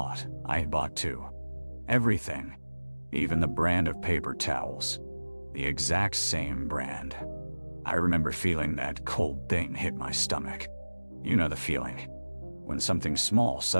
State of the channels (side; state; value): both; inverted; correlation -1.00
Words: I had bought too. Everything. Even the brand of paper towels. The exact same brand. I remember feeling that cold thing hit my stomach. You know the feeling. When something small